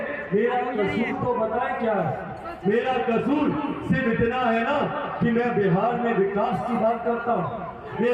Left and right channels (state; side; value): identical; both; correlation 1.00